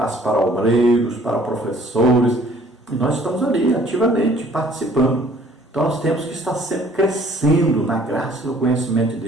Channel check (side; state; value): both; normal; correlation 0.56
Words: para obreiros, para professores. E nós estamos ali ativamente participando. Então nós temos que estar sempre crescendo na graça e no conhecimento de